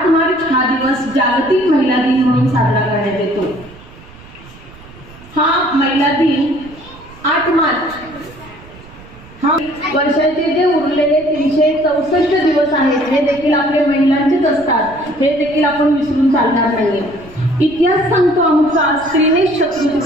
मार्च हा दिवस जागतिक महिला दिन म्हणून साजरा करण्यात येतो. हा महिला दिन 8 मार्च हा वर्षाचे जे उरलेले 364 दिवस आहेत हे देखील आपले महिलांचेच असतात, हे देखील आपण विसरून चालणार नाही. इतिहास सांगतो आमचा स्त्रीनेच शत्रू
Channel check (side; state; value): right; noise; rumble, 21 dB below the sound